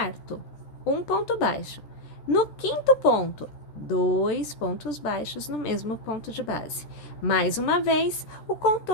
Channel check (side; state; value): right; late; 13 ms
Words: um ponto baixo. No quinto ponto, 2 pontos baixos no mesmo ponto de base. Mais uma vez, o